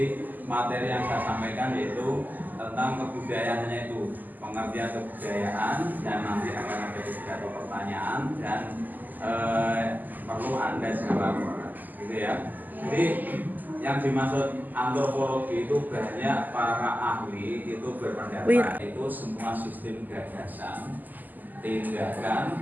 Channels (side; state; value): left; late; 0.084 ms